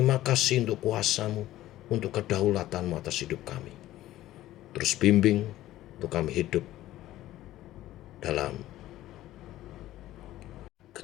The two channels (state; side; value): quieter; right; 14.8 dB